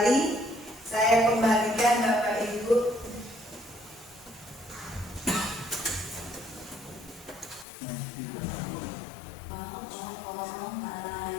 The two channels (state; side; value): drops out; right; at 7.7 s